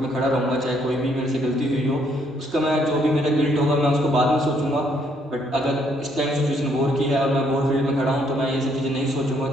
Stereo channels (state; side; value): normal; both; correlation 0.69